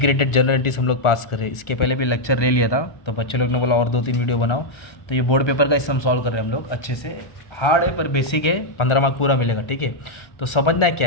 जनरल एंट्रीज हम लोग पास कर रहे हैं। इसके पहले भी लेक्चर ले लिया था, तो बच्चे लोग ने बोला और 2-3 वीडियो बनाओ। तो ये बोर्ड पेपर का इससे हम सॉल्व कर रहे हैं हम लोग अच्छे से। हार्ड है पर बेसिक है, 15 मार्क पूरा मिलेगा। ठीक है, तो समझना है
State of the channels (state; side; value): late; right; 1.3 ms